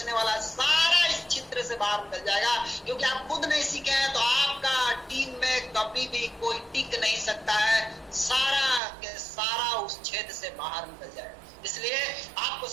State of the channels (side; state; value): left; drops out; at 8.8 s